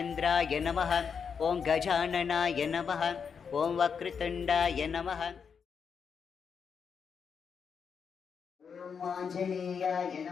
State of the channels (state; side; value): quieter; right; 6.4 dB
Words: నమః, ఓం గజాననాయ నమః, ఓం వక్రతుండాయ నమః. ఓం ఆంజనేయాయ